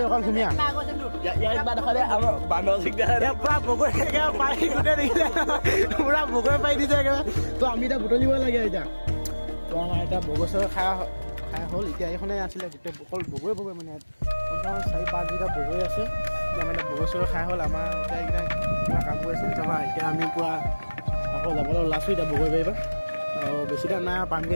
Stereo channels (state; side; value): inverted; both; correlation -1.00